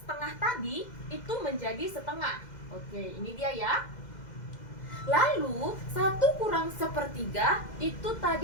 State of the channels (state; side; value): late; right; 2.0 ms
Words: tadi itu menjadi setengah. Oke, ini dia ya. Lalu 1 kurang sepertiga itu